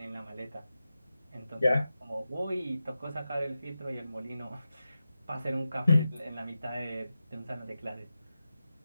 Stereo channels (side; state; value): both; inverted; correlation -0.92